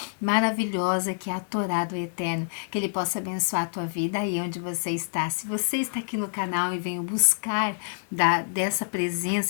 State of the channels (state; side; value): silent; right; digital silence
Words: maravilhosa que é a Torá do Eterno, que Ele possa abençoar a tua vida aí onde você está. Se você está aqui no canal e veio buscar dessa